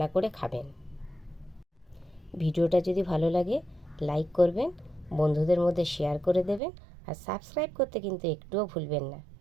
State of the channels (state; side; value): drops out; left; at 6.6 s